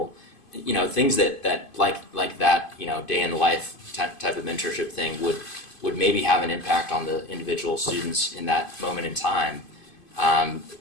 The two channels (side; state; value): right; late; 2.5 ms